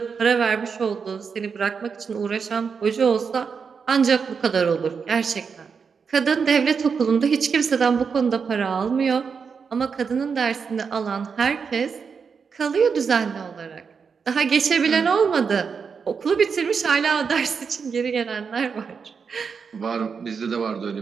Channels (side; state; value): left; quieter; 5.9 dB